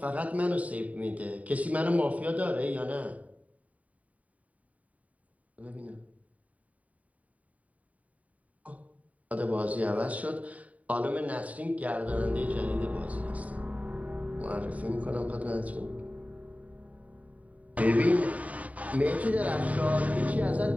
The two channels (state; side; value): late; left; 0.069 ms